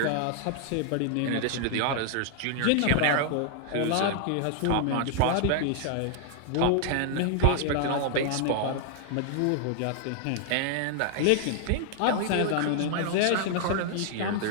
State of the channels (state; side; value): different; both; correlation 0.00